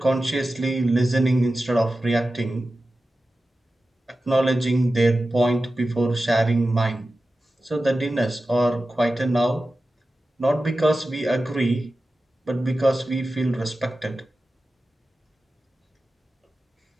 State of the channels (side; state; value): both; normal; correlation 0.94